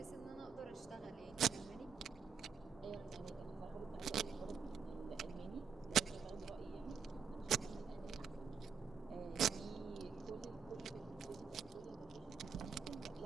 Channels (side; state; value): left; quieter; 6.4 dB